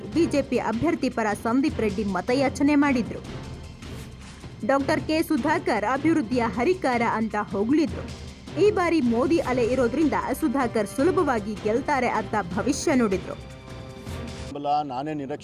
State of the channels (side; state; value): both; identical; correlation 1.00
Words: ಬಿಜೆಪಿ ಅಭ್ಯರ್ಥಿ ಪರ ಸಂದೀಪ್ ರೆಡ್ಡಿ ಮತಯಾಚನೆ ಮಾಡಿದ್ರು. ಡಾಕ್ಟರ್ ಕೆ ಸುಧಾಕರ್ ಅಭಿವೃದ್ಧಿಯ ಹರಿಕಾರ ಅಂತ ಹೊಗಳಿದ್ರು. ಈ ಬಾರಿ ಮೋದಿ ಅಲೆ ಇರೋದ್ರಿಂದ ಸುಧಾಕರ್ ಸುಲಭವಾಗಿ ಗೆಲ್ತಾರೆ ಅಂತ ಭವಿಷ್ಯ ನುಡಿದ್ರು. ನಾನೇ